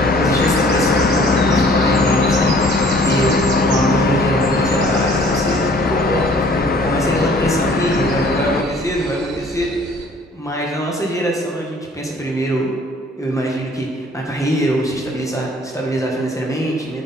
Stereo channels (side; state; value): both; normal; correlation 0.55